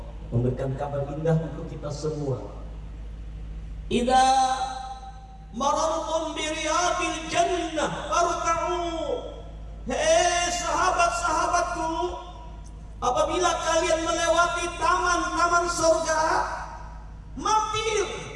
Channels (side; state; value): both; identical; correlation 1.00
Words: memberikan kabar indah untuk kita semua. Idza marartum bi riyadil jannah farka'u. Hei sahabat-sahabatku, apabila kalian melewati taman-taman surga, mampir,